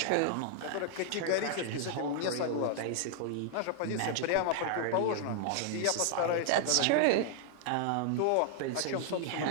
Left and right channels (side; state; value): both; different; correlation 0.00